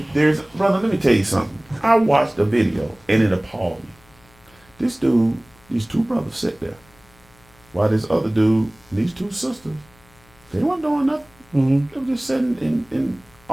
brother, let me tell you something. I watched a video and it appalled me. These two brothers sit there while this other dude, these two sisters, they weren't doing nothing. They were just sitting and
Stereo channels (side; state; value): left; noise; hum, 29 dB below the sound